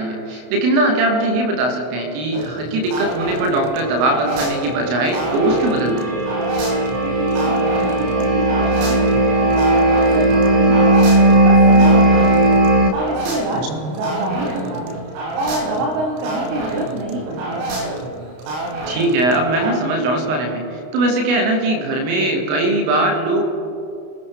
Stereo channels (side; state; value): left; late; 32 ms